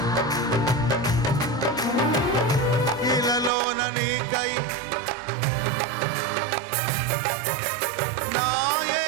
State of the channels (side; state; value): left; drops out; at 3.5 s